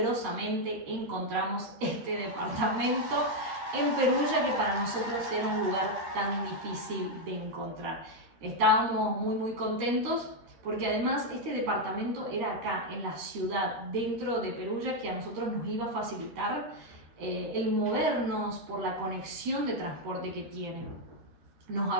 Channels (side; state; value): left; late; 13 ms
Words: encontramos este departamento en Perugia, que para nosotros era un lugar tan difícil de encontrar. Estábamos muy contentos porque además este departamento era acá, en la ciudad, dentro de Perugia, que a nosotros nos iba a facilitar el movernos por la conexión de transporte que tiene. Nos